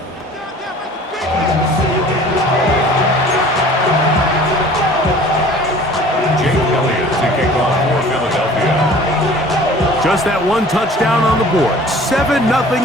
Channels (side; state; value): both; normal; correlation 0.47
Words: Jake Elliott to kick off for Philadelphia. Just that one touchdown on the board.